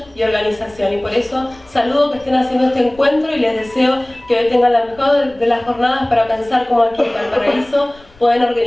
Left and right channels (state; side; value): noise; left; rumble, 26 dB below the sound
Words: y organización. Y por eso saludo que estén haciendo este encuentro y les deseo que hoy tengan la mejor de las jornadas para pensar cómo aquí en Valparaíso pueden